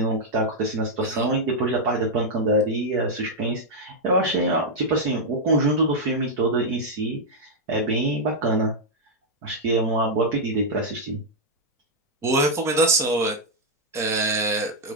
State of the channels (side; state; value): both; normal; correlation -0.03